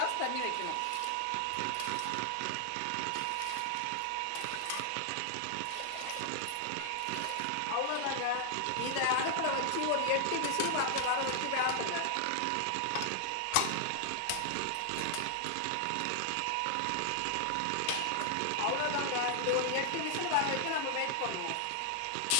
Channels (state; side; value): different; both; correlation 0.00